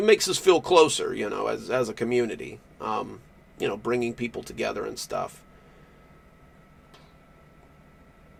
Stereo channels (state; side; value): identical; both; correlation 1.00